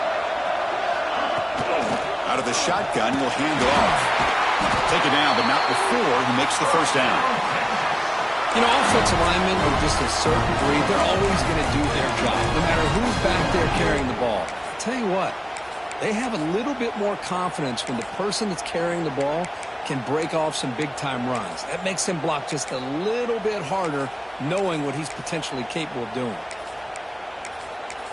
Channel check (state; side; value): identical; both; correlation 1.00